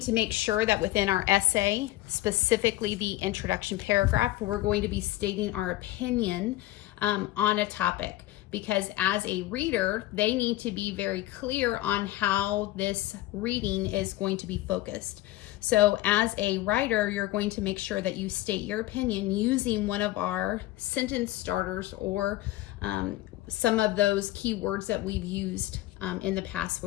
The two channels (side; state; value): right; quieter; 16.4 dB